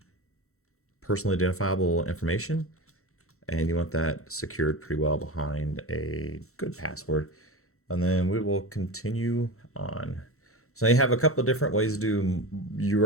personally identifiable information, and you want that secured pretty well behind a good password. And then we will continue on. So you have a couple of different ways to do. You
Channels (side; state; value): right; late; 0.63 ms